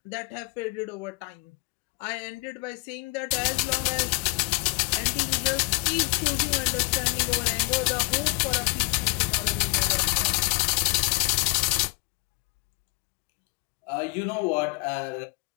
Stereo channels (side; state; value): right; quieter; 26.5 dB